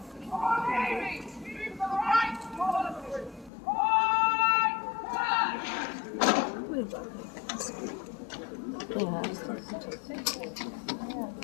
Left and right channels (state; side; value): drops out; right; at 3.5 s